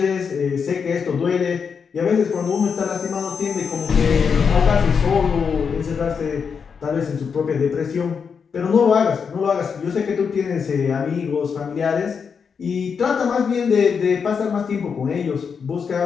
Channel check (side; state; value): right; quieter; 6.2 dB